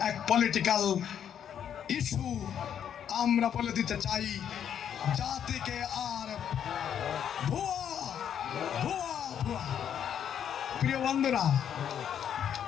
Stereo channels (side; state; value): right; quieter; 9.0 dB